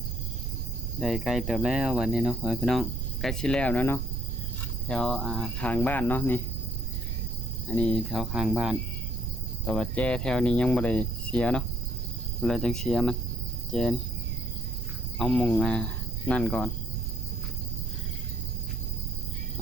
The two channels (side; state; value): right; noise; rumble, 1 dB below the sound